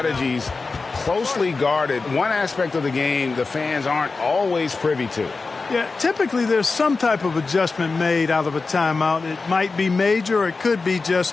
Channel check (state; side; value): quieter; right; 4.1 dB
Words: closely guarded. One aspect of the game the fans aren't always privy to. Yeah, typically there's some type of adjustment made out of a timeout. It might be major or it could be